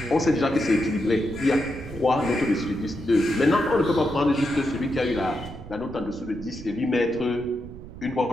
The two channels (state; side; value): noise; right; rumble, 14 dB below the sound